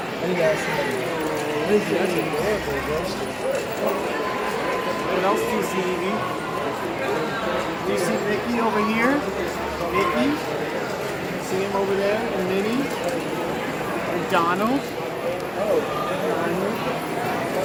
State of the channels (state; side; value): identical; both; correlation 1.00